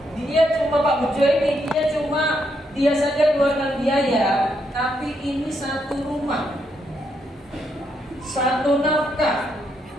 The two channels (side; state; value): both; normal; correlation 0.78